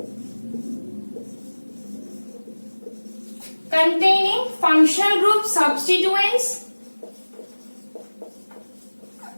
containing functional group substituents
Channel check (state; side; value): inverted; both; correlation -1.00